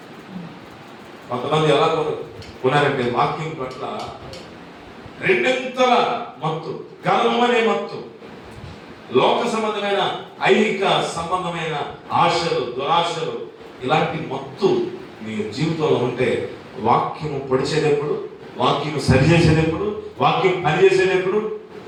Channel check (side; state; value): both; identical; correlation 1.00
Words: కొంతమంది ఎలా కొన్నారంటే వాక్యం పట్ల రెండింతల మత్తు, గర్వం అనే మత్తు, లోక సంబంధమైన ఐహిక సంబంధమైన ఆశలు, దురాశలు, ఇలాంటి మత్తు మీ జీవితంలో ఉంటే వాక్యము పొడిచేటప్పుడు, వాక్యము సరిచేసేటప్పుడు, వాక్యం పనిచేసేటప్పుడు,